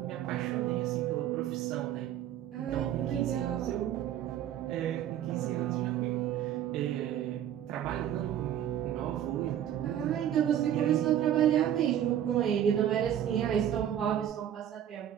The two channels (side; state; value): left; quieter; 10.6 dB